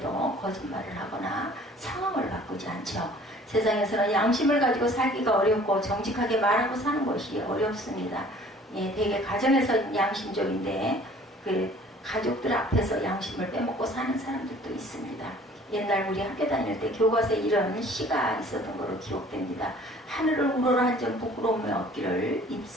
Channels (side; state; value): both; normal; correlation 0.52